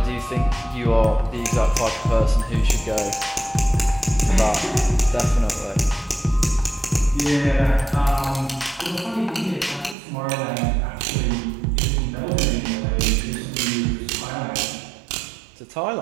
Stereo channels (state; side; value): drops out; left; at 10.0 s